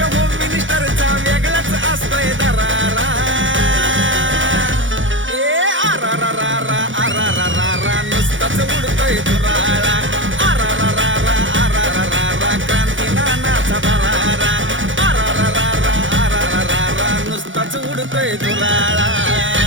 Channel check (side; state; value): left; late; 0.56 ms